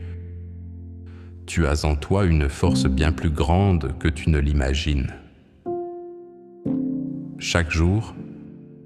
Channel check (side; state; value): both; identical; correlation 1.00